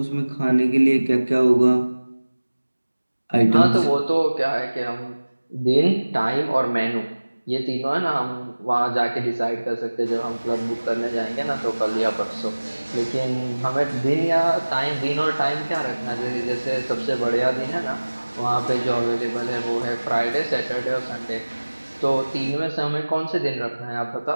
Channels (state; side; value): inverted; both; correlation -1.00